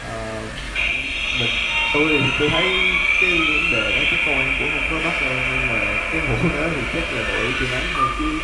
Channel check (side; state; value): both; identical; correlation 1.00